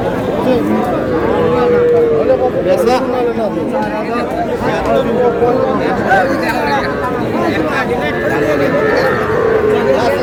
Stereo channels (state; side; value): noise; left; hum, 23 dB below the sound